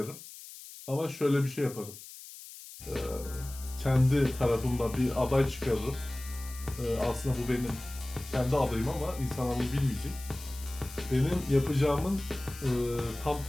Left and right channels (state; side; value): noise; left; hiss, 15 dB below the sound